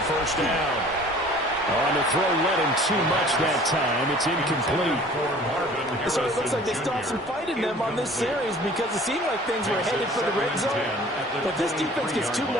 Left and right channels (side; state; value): both; normal; correlation 0.49